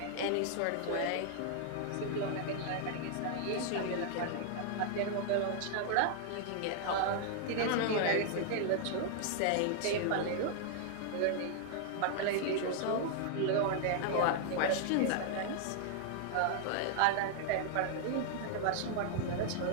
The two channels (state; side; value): different; both; correlation 0.00